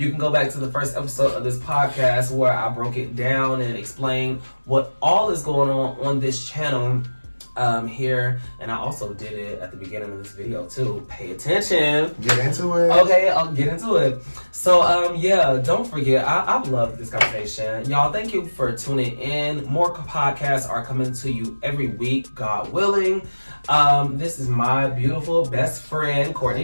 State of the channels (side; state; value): both; inverted; correlation -1.00